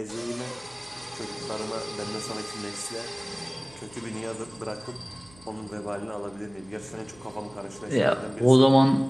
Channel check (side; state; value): right; noise; hum, 24 dB below the sound